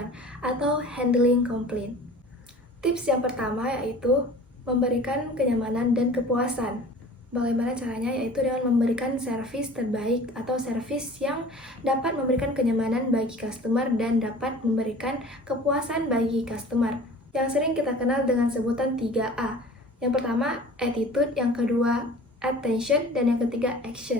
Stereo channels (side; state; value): both; normal; correlation 0.44